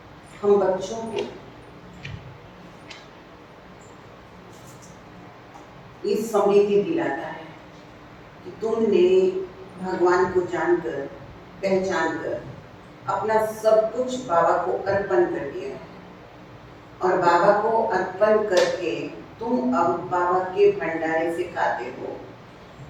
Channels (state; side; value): identical; both; correlation 1.00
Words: हम बच्चों को इस स्मृति दिलाता है कि तुमने भगवान को जानकर पहचान कर अपना सब कुछ बाबा को अर्पण कर दिया है और बाबा को अर्पण करके तुम अब बाबा के भंडारे से खाते हो।